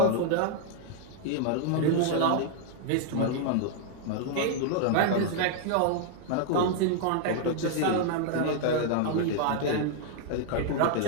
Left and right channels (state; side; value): different; both; correlation 0.00